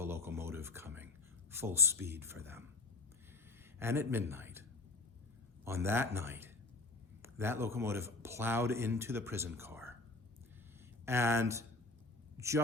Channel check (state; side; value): quieter; right; 3.3 dB